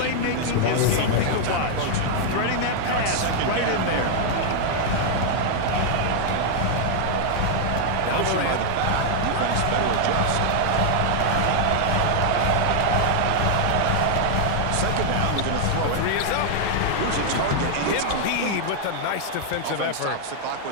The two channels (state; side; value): different; both; correlation -0.01